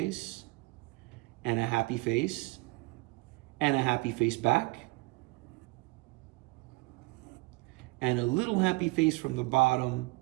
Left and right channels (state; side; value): quieter; left; 24.8 dB